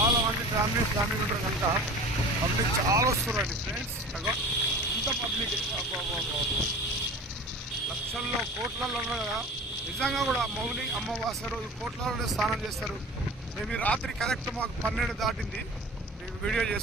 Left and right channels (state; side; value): normal; both; correlation 0.39